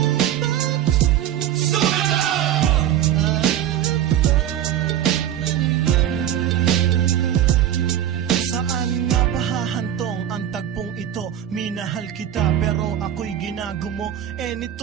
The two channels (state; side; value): quieter; left; 11.0 dB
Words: Minahal kita pero ako'y ginagumo. And it